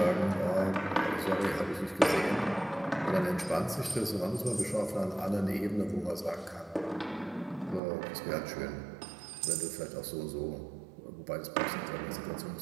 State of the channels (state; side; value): drops out; left; at 7.8 s